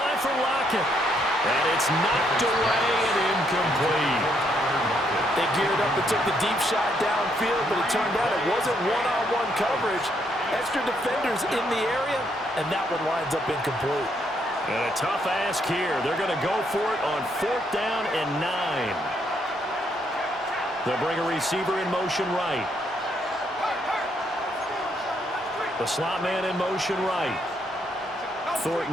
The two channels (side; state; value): both; normal; correlation 0.73